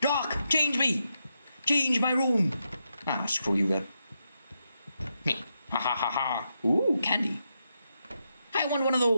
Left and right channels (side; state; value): both; inverted; correlation -0.84